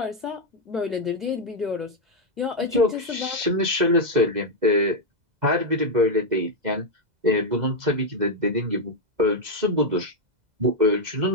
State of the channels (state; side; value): late; left; 2.0 ms